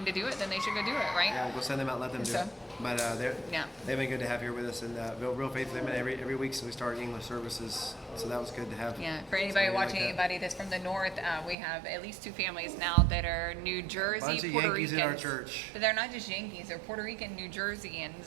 to do it, then they should go do it, right? Yeah, we'll send them out, let them do it. But they've been good to have here with us, and real faithful. They've been every week since we started English services, so that was good to have. Yeah, for anybody watching, anybody that's from the north, we have at least 2 families now that are New Jersey, bunch of Puerto Yankees Ricans. in our church. But they're not just Yankees; they're Puerto Rican New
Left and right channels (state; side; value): drops out; left; at 11.6 s